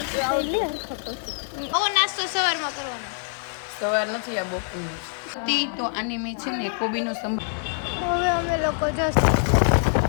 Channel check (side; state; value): right; silent; 62 dB below the other